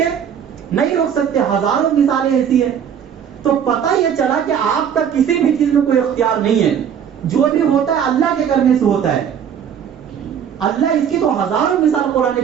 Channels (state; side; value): quieter; left; 8.4 dB